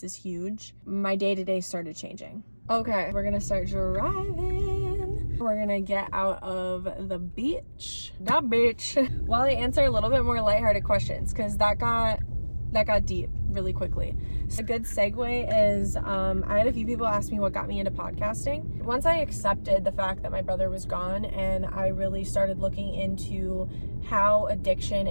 is huge. My day-to-day started changing. Okay, we're gonna start driving. We're gonna get out of the beach. While I answer a little bit more lighthearted questions, because that got deep really quickly. So a good segue is, I had a few people ask me what got me into podcasting. Once I accepted the fact that my brother was gone, and I really started looking into how addiction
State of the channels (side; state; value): both; inverted; correlation -1.00